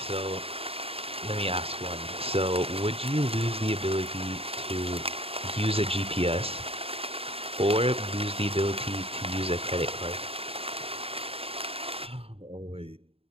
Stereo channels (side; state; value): left; late; 0.28 ms